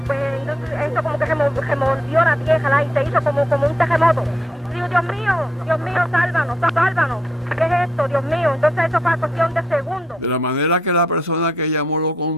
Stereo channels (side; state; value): both; normal; correlation 0.76